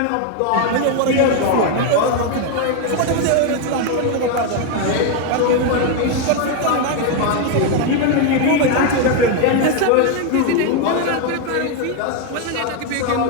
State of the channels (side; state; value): both; different; correlation 0.01